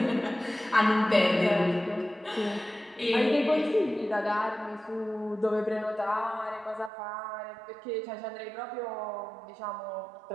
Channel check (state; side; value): drops out; left; at 6.9 s